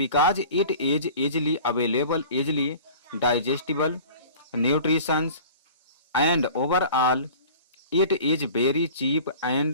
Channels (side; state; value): both; inverted; correlation -0.43